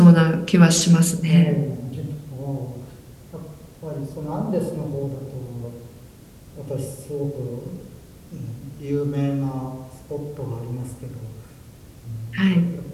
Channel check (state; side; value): identical; both; correlation 1.00